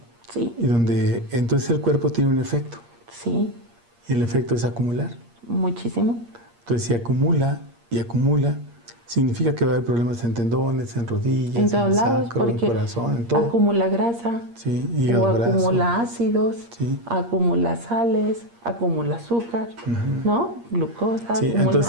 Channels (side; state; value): left; late; 8.5 ms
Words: Sí. Y donde entonces el cuerpo tiene un efecto. Sí. y el efecto es acumular. Muchísimo. Entonces, si acumula y acumula, significa que va a haber problemas en tendones, en rodillas, En todos en el lados, sacro, en el porque corazón, en todo. acumula grasa, Sí, o hígado graso. acumula ácidos, Sí. acumula sales, acumula azúcar, ¿no? Glucosa, Sí,